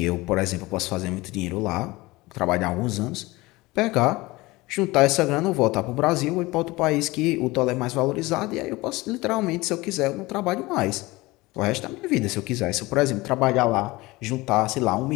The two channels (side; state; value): right; quieter; 21.2 dB